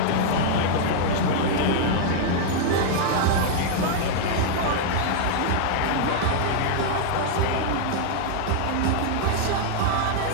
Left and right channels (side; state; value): both; different; correlation -0.01